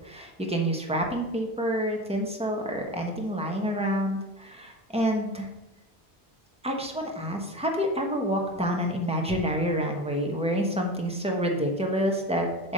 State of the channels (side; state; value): both; normal; correlation 0.29